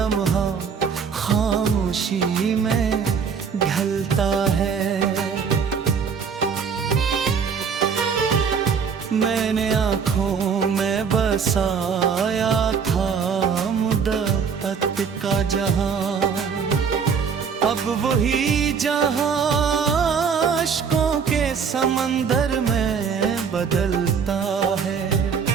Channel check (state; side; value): quieter; left; 6.3 dB